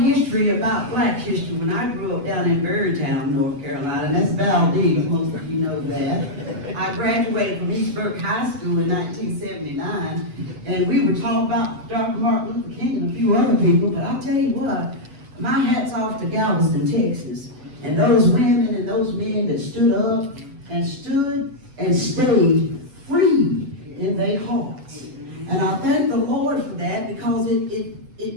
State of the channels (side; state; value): left; late; 7.9 ms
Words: history about black history when I grew up down in Berrytown, North Carolina, and that's Valdez, most of you know that. I graduated from East Burke High School in 1979, and we were taught about Dr. Martin Luther King and a few other people, but I'll tell you what, my hat's off to Galveston, Texas, and those women and those men that stood up and stayed free in their hearts. And I thank the Lord for that because